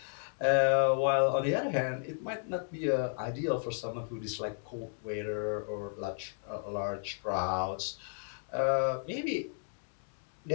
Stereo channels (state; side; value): silent; right; digital silence